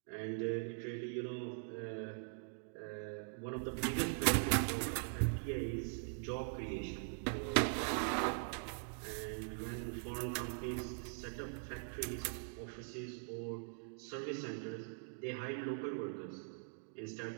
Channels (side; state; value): left; silent; digital silence